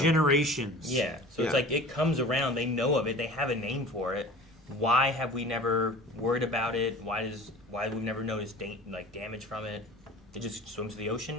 Yeah. So it's like it comes around. They know of it. They have a name for it. Why have we never worried about it? Why have we never noticed damage from it? It just swims to the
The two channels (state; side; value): normal; both; correlation 0.40